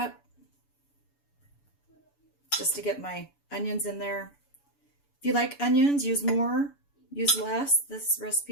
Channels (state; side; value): late; right; 7.0 ms